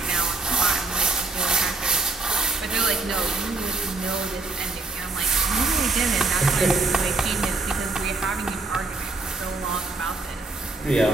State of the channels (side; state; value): left; quieter; 3.4 dB